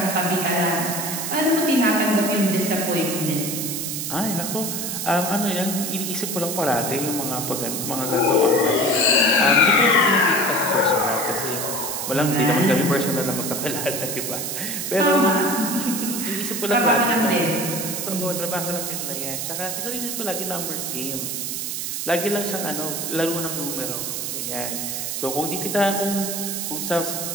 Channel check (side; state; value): right; noise; hiss, 3 dB below the sound